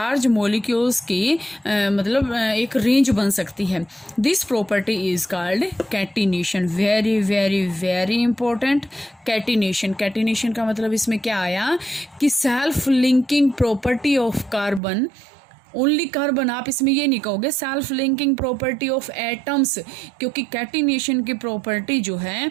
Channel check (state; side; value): drops out; left; at 14.8 s